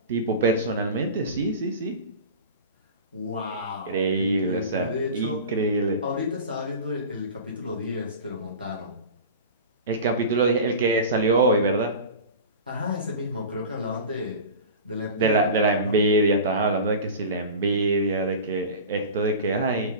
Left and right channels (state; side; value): inverted; both; correlation -0.33